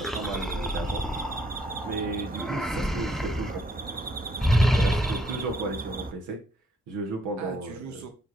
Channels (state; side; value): normal; both; correlation 0.70